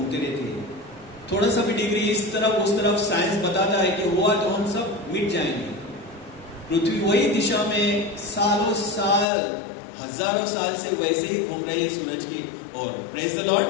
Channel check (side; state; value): right; drops out; at 9.2 s